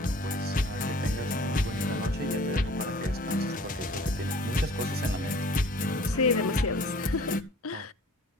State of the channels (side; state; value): both; normal; correlation 0.49